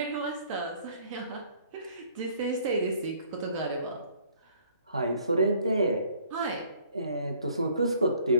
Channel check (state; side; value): inverted; both; correlation -0.58